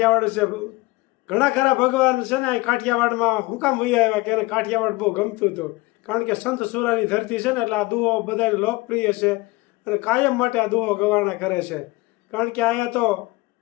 છે. ઘણા ખરા ભગવાન છે ને કાઠિયાવાડમાં હું કામ વૈયા આવ્યા કે એને કાઠિયાવાડ બહુ ગમતું હતું. કારણ કે સંત સુરાની ધરતી છે ને એટલે આ દુહો બધા લોકપ્રિય છે અને કાયમ માટે આ દુહો ગવાણા કરે છે. કારણ કે અહીંયા તો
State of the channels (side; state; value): right; quieter; 22.1 dB